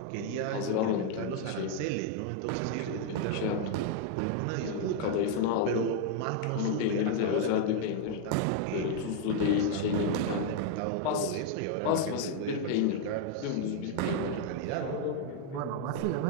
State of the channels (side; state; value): both; different; correlation 0.00